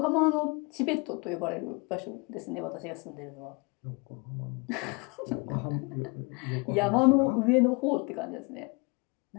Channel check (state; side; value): quieter; right; 29.1 dB